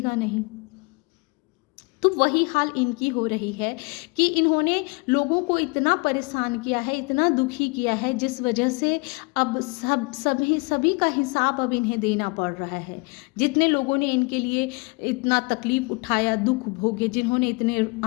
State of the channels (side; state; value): right; quieter; 29.6 dB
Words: नहीं। तो वही हाल इनकी हो रही है कि इन्होंने लोगों को इतना परेशान किया है, इतना दुखी किया है, जिस वजह से अब सभी का हिसाब अब इन्हें देना पड़ रहा है। जितने लोगों ने इनके लिए इतना तकलीफ उठाया, दुख भोगे, जिन्होंने इतने